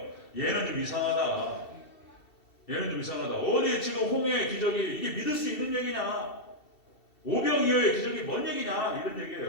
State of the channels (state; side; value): late; right; 2.7 ms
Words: 얘는 좀 이상하다. 얘는 좀 이상하다. 어디 지금 홍해의 기적이 이게 믿을 수 있는 얘기냐? 오병이어의 기적이 뭔 얘기냐? 이런